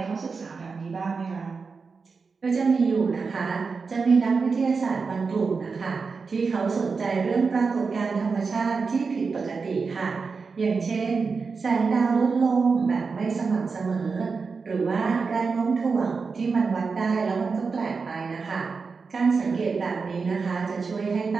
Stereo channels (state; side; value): quieter; left; 4.8 dB